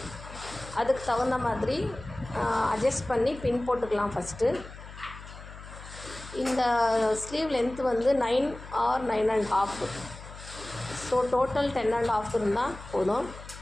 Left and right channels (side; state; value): left; noise; hum, 15 dB below the sound